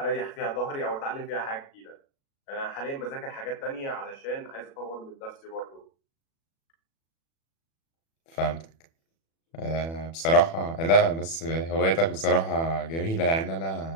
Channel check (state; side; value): late; right; 36 ms